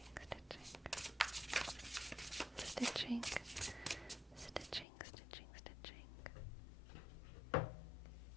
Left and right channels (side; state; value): right; drops out; at 4.9 s